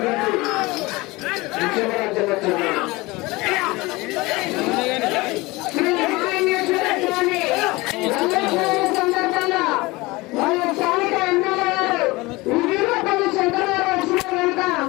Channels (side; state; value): right; quieter; 22.2 dB